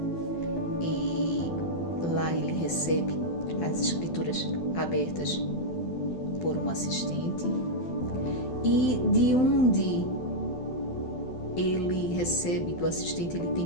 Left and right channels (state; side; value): late; right; 12 ms